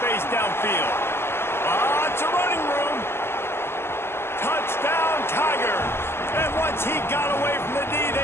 downfield. Lots of running room. Touchdown, Tigers. And once he got away from the D,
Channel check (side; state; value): right; late; 0.12 ms